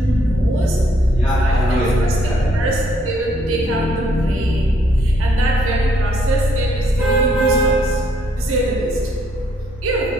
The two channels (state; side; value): normal; both; correlation 0.69